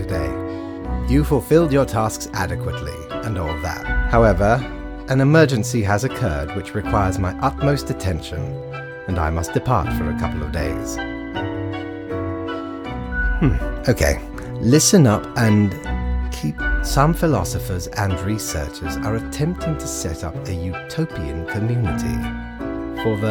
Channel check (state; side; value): identical; both; correlation 1.00